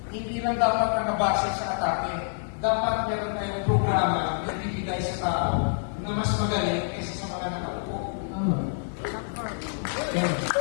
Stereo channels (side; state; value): right; silent; 60 dB below the other